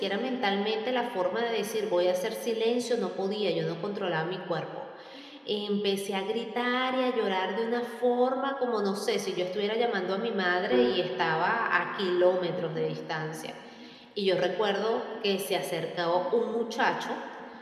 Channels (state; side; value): identical; both; correlation 1.00